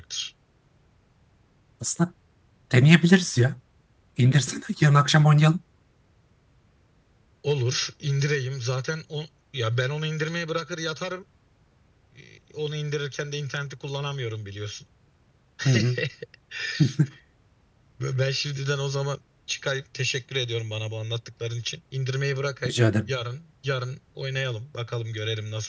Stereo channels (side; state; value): both; identical; correlation 1.00